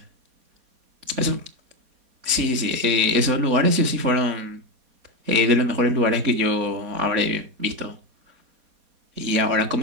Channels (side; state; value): left; late; 4.2 ms